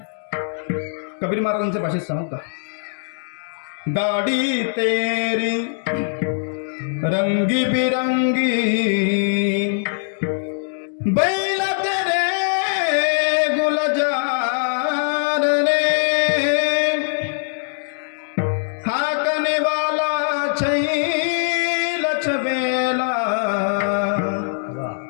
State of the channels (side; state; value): right; silent; digital silence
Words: कबीर महाराजांच्या भाषेत सांगू का गाडी तेरी रंगी बिरंगी बैल तेरे गुलजार रे हाकने वाला छैल छबेला